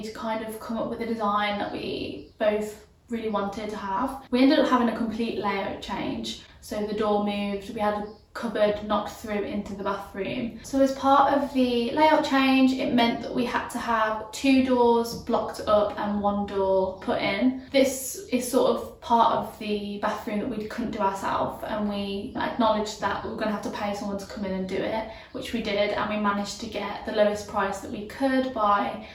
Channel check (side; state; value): both; identical; correlation 1.00